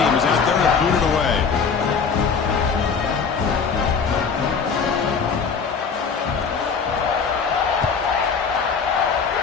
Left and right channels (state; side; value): quieter; right; 5.7 dB